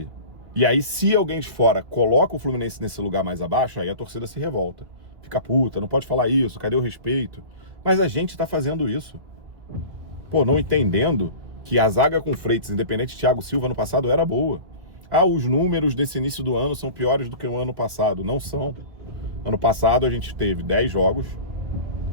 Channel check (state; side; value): late; left; 2.2 ms